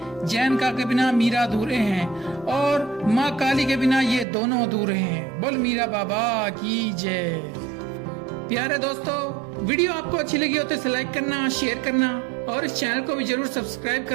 जैन का के बिना मीरा अधूरे हैं, और माँ काली के बिना ये दोनों अधूरे हैं। बोल मीरा बाबा की जय। प्यारे दोस्तों, वीडियो आपको अच्छी लगी हो तो इसे लाइक करना, शेयर करना और इस चैनल को भी जरूर सब्सक्राइब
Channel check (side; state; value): left; drops out; at 4.2 s